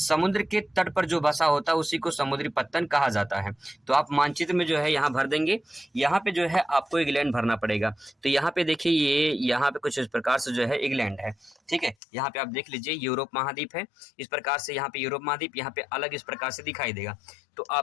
के तट पर जो बसा होता है उसी को समुद्री पत्तन कहा जाता है। तो आप मानचित्र में जो है यहाँ भर देंगे। यहाँ पे जो है आपको इंग्लैंड भरना पड़ेगा, तो यहाँ पे देखिए ये यहाँ पे कुछ इस प्रकार से जो है इंग्लैंड है। ठीक है, यहाँ पे आप देख लीजिए यूरोप महाद्वीप है, इस प्रकार से यहाँ पे यूरोप महाद्वीप, यहाँ पे अलग इस प्रकार से दिखाई देगा। तो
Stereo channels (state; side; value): drops out; right; at 12.0 s